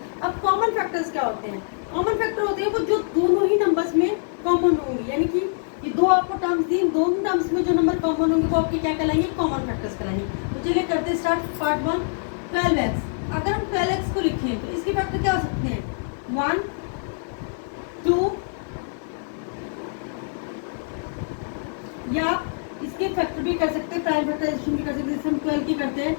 अब कॉमन फैक्टर्स क्या होते हैं? कॉमन फैक्टर होते हैं वो जो दोनों ही नंबर्स में कॉमन होंगे, यानी कि ये दो आपको टर्म्स दी, दोनों टर्म्स में जो नंबर कॉमन होंगे वो आपके क्या कहलाएंगे, कॉमन फैक्टर्स कहलाएंगे। तो चलिए करते हैं स्टार्ट। Part 1 12x। अगर हम 12x को लिखें तो इसके फैक्टर क्या हो सकते हैं, 1 2, या इसके फैक्टर भी कर सकते हैं, प्राइम फैक्टराइजेशन भी कर सकते हैं। जैसे हम 12 की करते हैं,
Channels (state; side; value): silent; right; 58 dB below the other